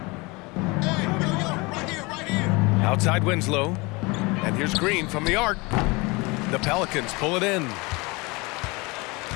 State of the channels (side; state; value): right; quieter; 25.6 dB